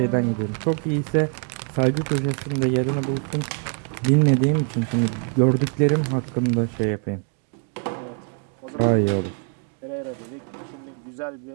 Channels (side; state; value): left; quieter; 37.5 dB